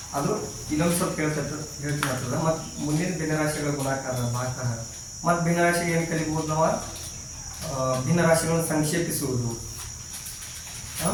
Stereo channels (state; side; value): identical; both; correlation 1.00